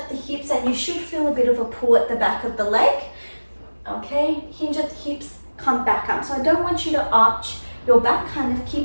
the hips, and you should feel a bit of a pull at the back of the leg. Okay, hinge at the hips, come back up. So I don't want you to arch your back, kind of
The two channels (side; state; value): both; inverted; correlation -1.00